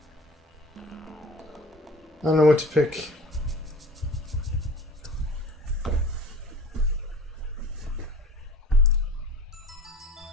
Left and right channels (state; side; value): normal; both; correlation 0.43